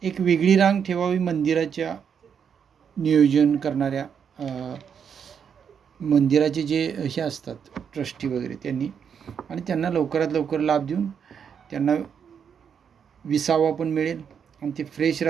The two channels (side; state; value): left; quieter; 7.3 dB